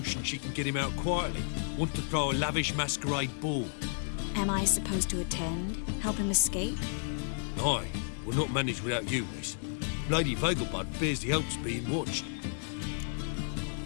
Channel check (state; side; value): silent; right; digital silence